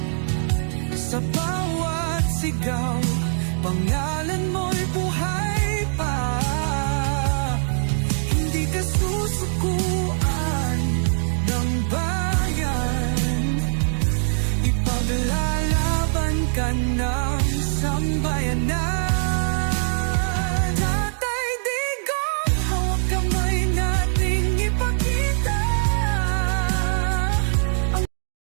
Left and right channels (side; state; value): left; silent; digital silence